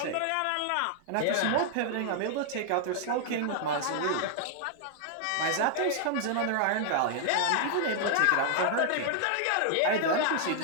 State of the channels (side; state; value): both; different; correlation 0.00